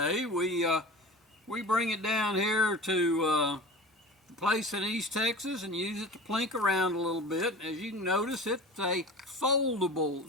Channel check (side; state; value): both; normal; correlation 0.36